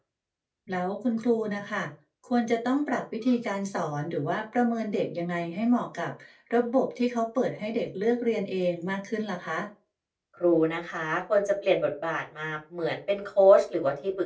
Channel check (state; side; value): identical; both; correlation 1.00